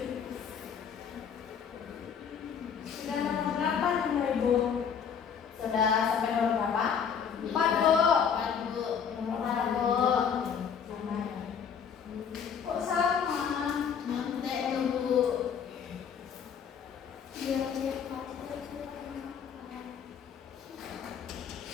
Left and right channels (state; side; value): quieter; right; 7.3 dB